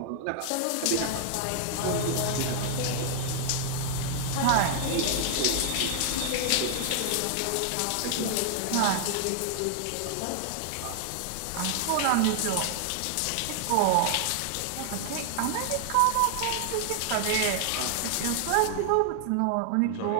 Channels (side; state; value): both; different; correlation 0.00